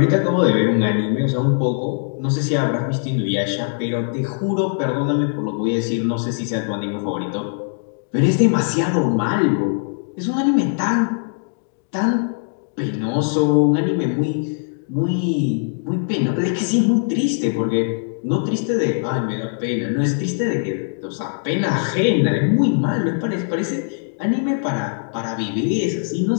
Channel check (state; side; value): silent; right; digital silence